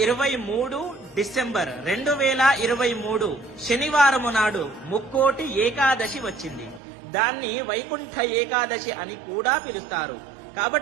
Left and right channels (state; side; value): drops out; left; at 6.8 s